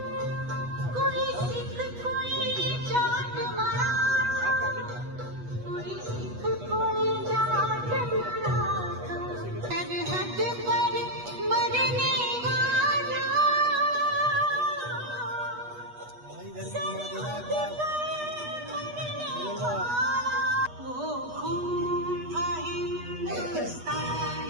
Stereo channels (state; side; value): late; left; 8.2 ms